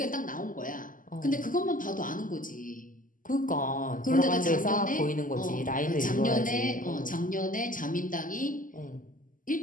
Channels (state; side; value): late; right; 0.39 ms